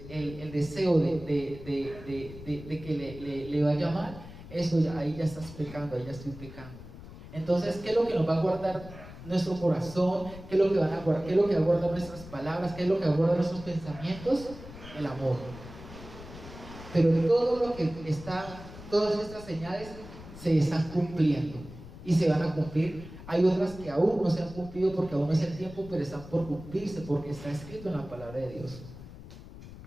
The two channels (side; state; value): left; noise; rumble, 15 dB below the sound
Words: deseo de que le vaya mal, eso ya, ahí ya estás pecando, ahí ya estoy pecando. Entonces, ¿qué es lo que nos va a guardar nuestro corazón? ¿Qué es lo que va a guardar nuestras palabras? ¿Qué es lo que va a guardar nuestros pensamientos? El amor. Pero todas estas señales se están cumpliendo y se van a cumplir. Hay otras que aún no se han cumplido porque aún no es el tiempo, pero están por cumplirse porque está escrito en la palabra de Dios.